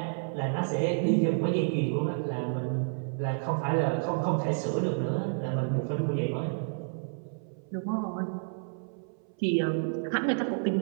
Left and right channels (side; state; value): left; silent; 58 dB below the other